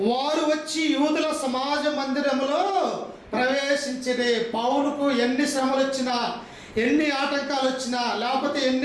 వారు వచ్చి యూదుల సమాజ మందిరములో ప్రవేశించిరి. పౌలుకు ఎన్ని శ్రమలు వచ్చినా, ఎన్ని ఆటంకాలు వచ్చినా, లేకపోతే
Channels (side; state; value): both; identical; correlation 1.00